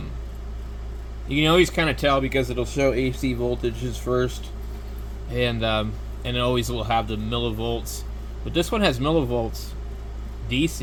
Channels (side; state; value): both; identical; correlation 1.00